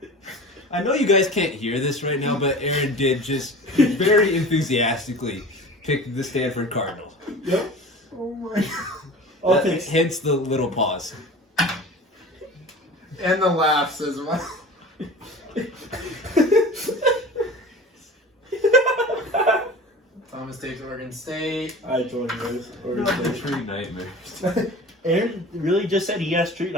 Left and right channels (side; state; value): both; normal; correlation 0.38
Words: I know you guys can't hear this right now, but Aaron did just very enthusiastically pick the Stanford Cardinals. Yep. Oh my! I'll take. Hence the little pause. And the laughs as well. Thomas takes Oregon State. I join yours. The tree nightmares. Aaron really just said he has street